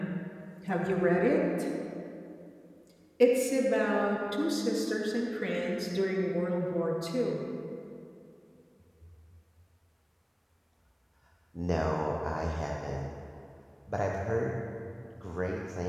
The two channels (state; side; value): identical; both; correlation 1.00